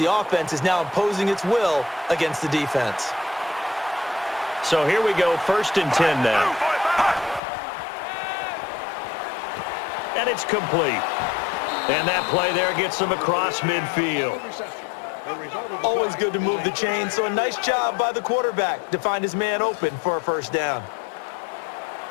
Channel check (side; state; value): right; drops out; at 7.4 s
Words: offense is now imposing its will against the defense. So here we go, 1st and 10 now. And it's complete. And that play there gets them across midfield. Always good to move the chain, so a nice job by the quarterback to find his man open for a first down.